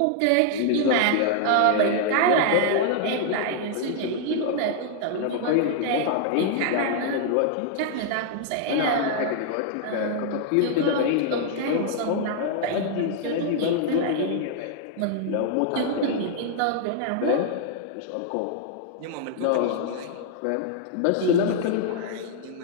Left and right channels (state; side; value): different; both; correlation -0.01